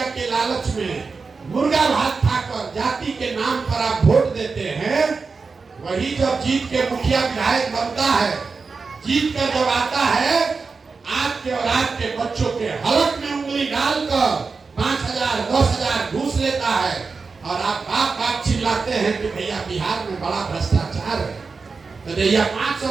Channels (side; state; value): left; quieter; 4.6 dB